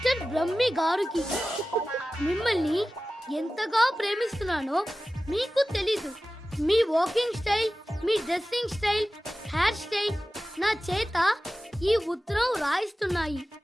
Brahmi గారికి మిమ్మల్ని ఎంతగా ప్రేమిస్తున్నానో మీకు తెలీదు. మీ వాకింగ్ స్టైల్, మీ డ్రెస్సింగ్ స్టైల్, హెయిర్ స్టైల్ నా చేత ఈ ఉత్తరం రాయిస్తున్నాయి.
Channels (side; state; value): both; normal; correlation 0.96